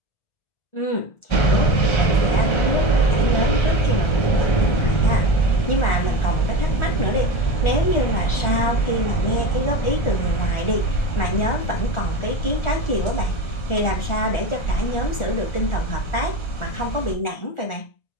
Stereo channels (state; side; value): late; right; 1.4 ms